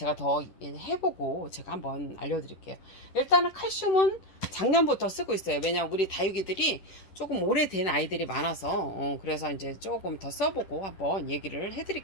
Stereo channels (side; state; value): right; late; 10 ms